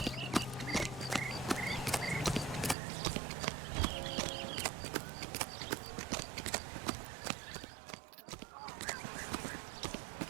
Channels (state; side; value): drops out; left; at 2.8 s